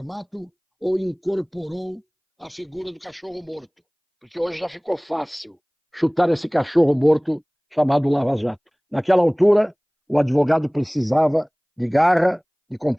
ou incorporou a figura do cachorro morto. Porque hoje já ficou fácil chutar esse cachorro morto chamado Lava Jato. Naquela altura, o advogado precisava de garra, de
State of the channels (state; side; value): identical; both; correlation 1.00